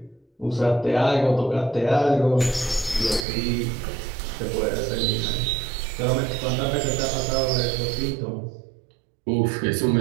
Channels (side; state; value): left; drops out; at 3.2 s